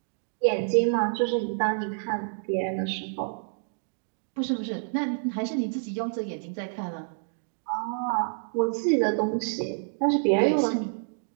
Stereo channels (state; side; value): silent; left; digital silence